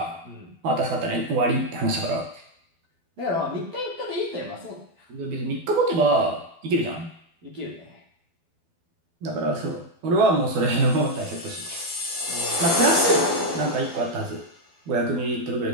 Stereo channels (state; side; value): late; left; 12 ms